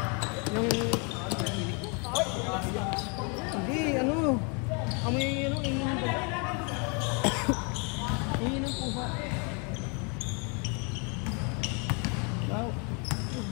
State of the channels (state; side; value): quieter; right; 34.7 dB